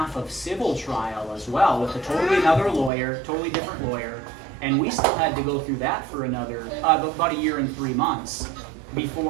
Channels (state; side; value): drops out; left; at 2.9 s